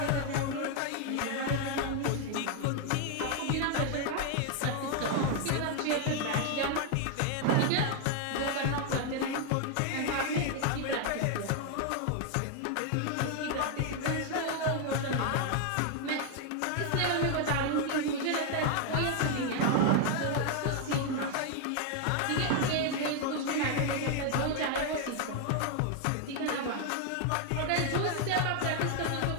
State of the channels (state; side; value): different; both; correlation 0.00